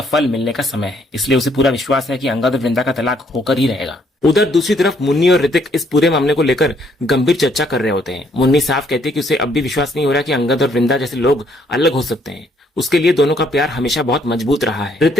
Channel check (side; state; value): both; normal; correlation 0.68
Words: फल मिलने का समय है। इसलिए उसे पूरा विश्वास है कि अंगद और वृंदा का तलाक होकर ही रहेगा। उधर दूसरी तरफ मुन्नी और ऋतिक इस पूरे मामले को लेकर गंभीर चर्चा कर रहे होते हैं। मुन्नी साफ कहती है कि उसे अब भी विश्वास नहीं हो रहा कि अंगद और वृंदा जैसे लोग अलग हो सकते हैं। उसके लिए दोनों का प्यार हमेशा बहुत मजबूत रहा है।